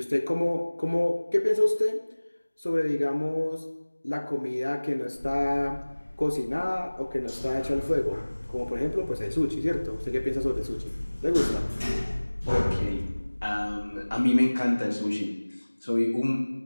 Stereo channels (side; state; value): both; inverted; correlation -1.00